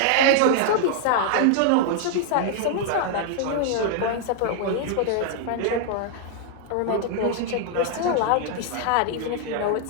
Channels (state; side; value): different; both; correlation -0.01